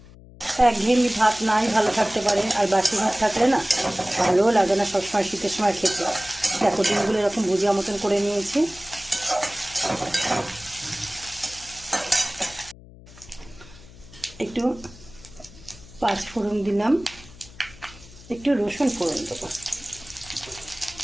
একঘেয়েমি ভাত নাই ভালো থাকতে পারে, আর বাসি ভাত থাকলে না ভালোও লাগে না সবসময় শীতের সময় খেতে। দেখো, ডিমগুলো এরকম ভুজিয়া মতন করে নিয়েছি। একটু পাঁচ ফোড়ন দিলাম, একটু রসুন ফোড়ন দেবো,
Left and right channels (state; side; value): noise; left; hum, 20 dB below the sound